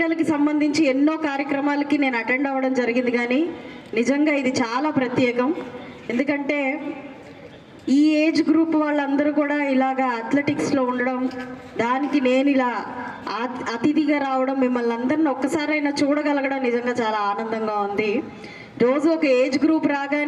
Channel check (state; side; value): identical; both; correlation 1.00